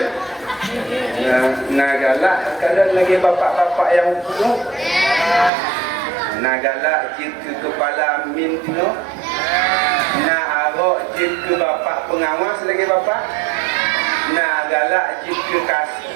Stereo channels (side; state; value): left; drops out; at 5.5 s